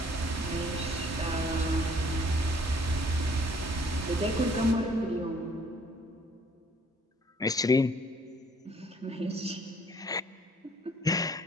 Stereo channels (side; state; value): both; normal; correlation 0.60